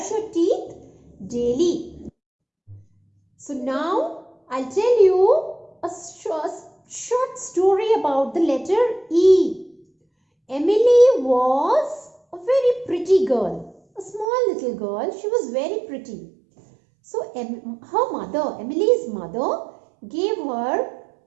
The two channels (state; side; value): drops out; left; at 14.2 s